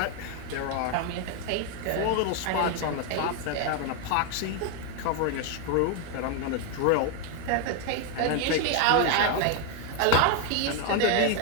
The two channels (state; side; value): different; both; correlation 0.01